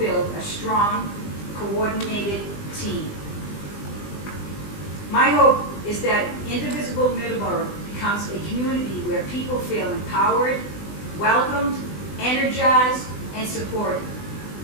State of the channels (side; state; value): right; late; 20 ms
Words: a strong, coordinated team. My hope is that Indivisible Middleboro becomes a community where people feel empowered, welcomed, energized, and supported.